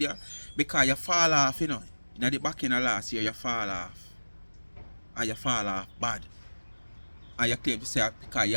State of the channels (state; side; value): inverted; both; correlation -1.00